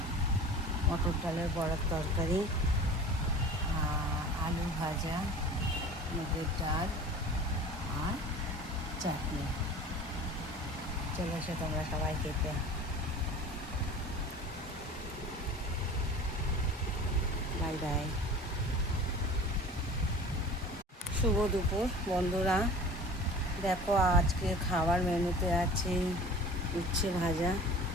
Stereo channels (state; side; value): normal; both; correlation 0.40